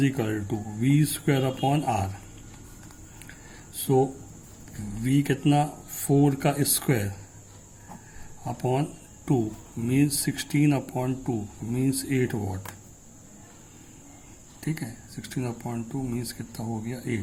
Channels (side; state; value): both; identical; correlation 1.00